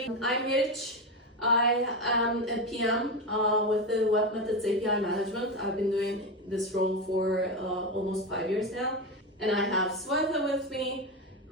I'm Rich. I am a PM with the webMethods API management. I've been doing this role for almost 5 years now. And I have Sweta with me,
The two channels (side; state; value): both; normal; correlation 0.16